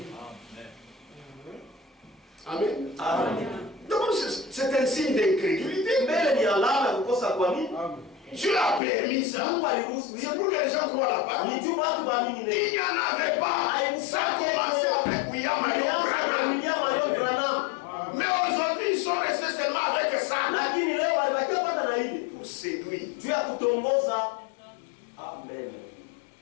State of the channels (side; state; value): right; drops out; at 8.8 s